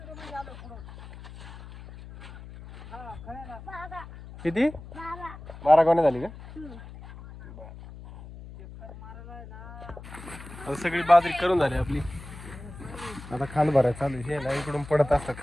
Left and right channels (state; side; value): noise; left; hum, 15 dB below the sound